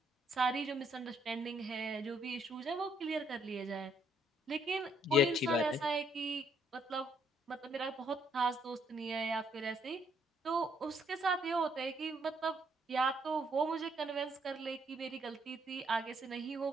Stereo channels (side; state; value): both; normal; correlation 0.69